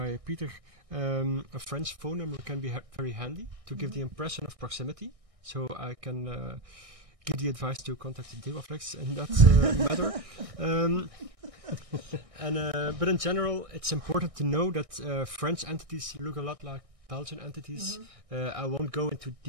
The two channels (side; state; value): left; late; 1.6 ms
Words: Peter, a French phone number can be very handy to give the impression of proximity. So I can give the advice to contact the Devaflex in that matter. But in general, it's important to know that French entities look a lot like Belgian entities. I won't go into